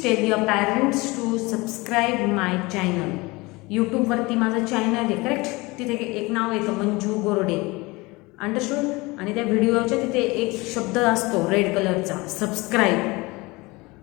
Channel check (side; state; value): right; quieter; 23.5 dB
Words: tell your parents to subscribe my channel. YouTube वरती माझं channel आहे, correct? तिथे एक नाव येतं Manju Gorde, understood? आणि त्या व्हिडिओच्या तिथे एक शब्द असतो रेड कलरचा, सबस्क्राईब.